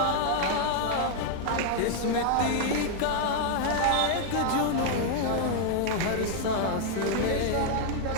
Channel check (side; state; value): both; different; correlation -0.01